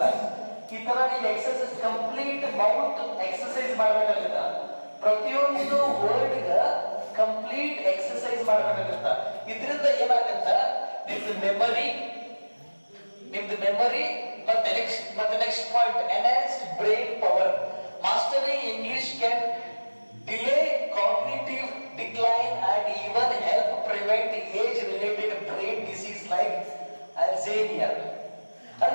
ಈ ತರ ನೀವು ಎಕ್ಸರ್ಸೈಸ್ ಕಂಪ್ಲೀಟ್ ಮೌತ್ ಎಕ್ಸರ್ಸೈಸ್ ಮಾಡ್ಬೇಕಾಗುತ್ತ. ಪ್ರತಿಯೊಂದು ವರ್ಡ್ ಗ ಕಂಪ್ಲೀಟ್ ಎಕ್ಸರ್ಸೈಸ್ ಮಾಡ್ಬೇಕಾಗುತ್ತ. ಇದರಿಂದ ಏನಾಗತ್ತ, ನಿಮ್ದು ಮೆಮರಿ ಮತ್ತೆ next point, enhanced brain power. Mastering English can delay cognitive decline and even help prevent age related brain disease like Alzheimer.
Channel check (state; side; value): inverted; both; correlation -1.00